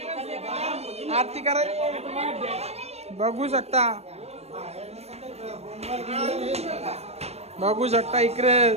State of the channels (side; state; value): left; late; 0.31 ms